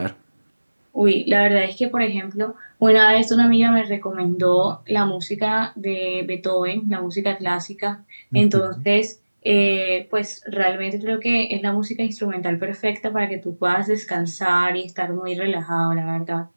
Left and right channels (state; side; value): inverted; both; correlation -1.00